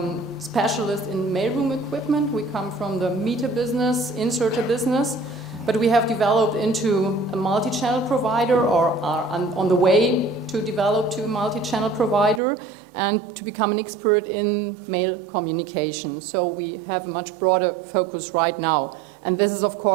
specialist in mailroom equipment. We come from the meter business, inserter business, but we have developed into a multi-channel provider, or are on the way to develop to a multi-channel provider and to become an expert in mail communication. So we have a much broader focus right now. And this is, of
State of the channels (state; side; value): drops out; left; at 12.4 s